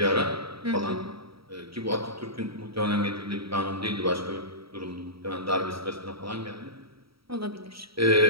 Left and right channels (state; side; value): late; left; 0.75 ms